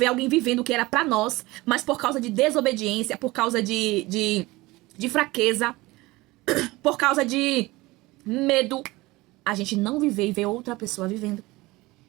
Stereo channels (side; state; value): left; quieter; 20.7 dB